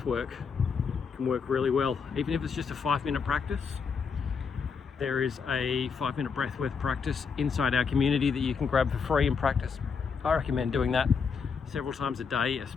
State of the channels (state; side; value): quieter; right; 5.7 dB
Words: work can work really well, even if it's just a 5-minute practice. There is a 5-minute breathwork practice inside our community that you can grab for free and practice. I recommend doing that several times a day,